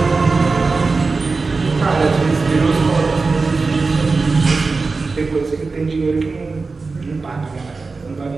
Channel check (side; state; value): left; quieter; 4.1 dB